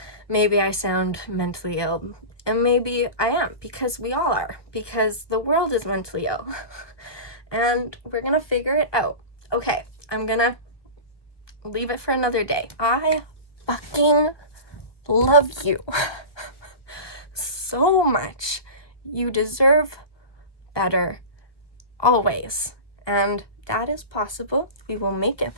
Maybe I sound mentally ill, and maybe I am, because we all are, because the world is mentally ill. And we're gonna figure it out. Okay, I'm gonna leave it for another day. I fucking love you so much. You deserve better always. And that is possible. We will make it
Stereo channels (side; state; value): right; late; 1.2 ms